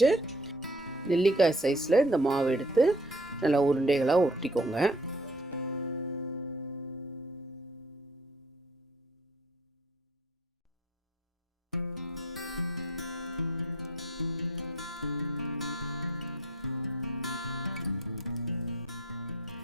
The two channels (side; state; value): both; normal; correlation 0.54